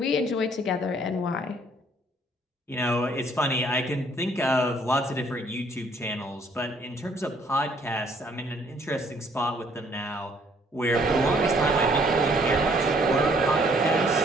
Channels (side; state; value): both; normal; correlation 0.63